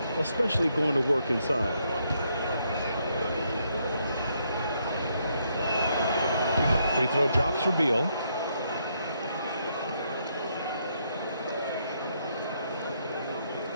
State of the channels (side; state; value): both; inverted; correlation -0.75